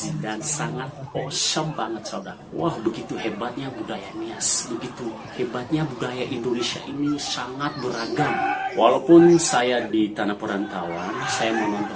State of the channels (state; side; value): identical; both; correlation 1.00